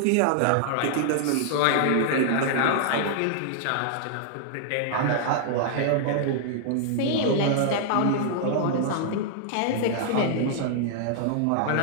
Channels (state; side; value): different; both; correlation -0.01